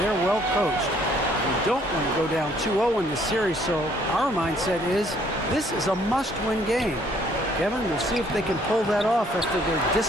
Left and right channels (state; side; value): normal; both; correlation 0.63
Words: well coached. We don't want to go down 2-0 in this series, so our mindset is this is a must-win game. Kevin, we'll see if they can pull that off after their